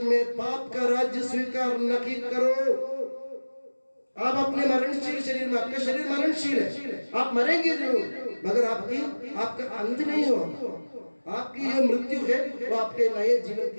में पाप का राज्य स्वीकार नहीं करो। आप अपने मरणशील शरीर में, आपका शरीर मरणशील है, आप मरेंगे जरूर, मगर आपका अंत नहीं हो। आपकी ये मृत्यु है वो आपके नए जीवन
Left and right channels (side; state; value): both; inverted; correlation -1.00